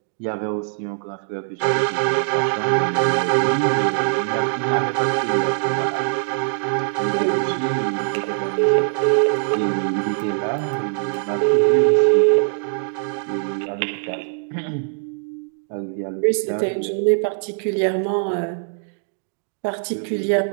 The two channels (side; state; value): left; silent; digital silence